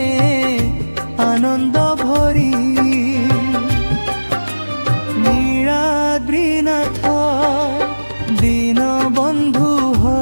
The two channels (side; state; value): both; inverted; correlation -1.00